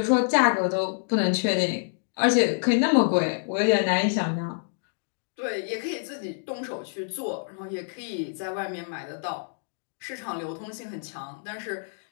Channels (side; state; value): right; silent; digital silence